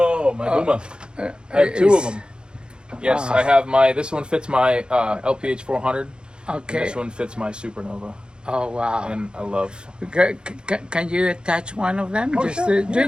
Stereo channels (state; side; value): late; left; 0.050 ms